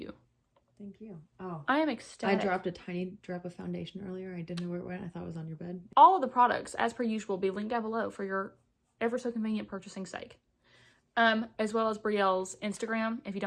Thank you. Oh. I am ecstatic. I dropped a tiny drop of foundation earlier. I didn't know where it went. I thought it was on your bed. All of the products, as per usual, will be linked down below for your ever so convenient purchasing sake. As well as Brielle's Instagram. If you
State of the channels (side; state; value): both; identical; correlation 1.00